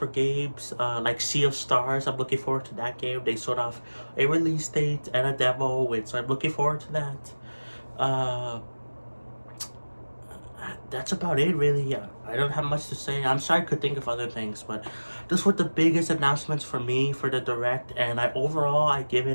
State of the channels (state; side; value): inverted; both; correlation -1.00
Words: games like Sea of Stars. I'm looking forward to that game. They showed off a release date and a demo, so I'm looking forward to that. Uh, that's about it, really. I don't have much to say. I'm sorry I could think of other things, but those were the biggest announcements for me for the direct, and I give